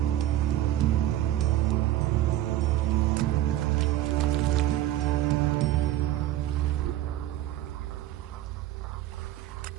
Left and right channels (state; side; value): quieter; left; 13.7 dB